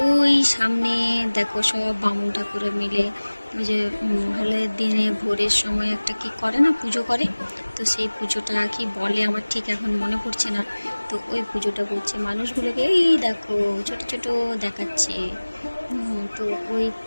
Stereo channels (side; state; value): both; inverted; correlation -1.00